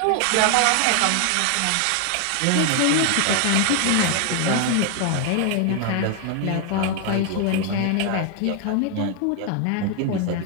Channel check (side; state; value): both; different; correlation 0.00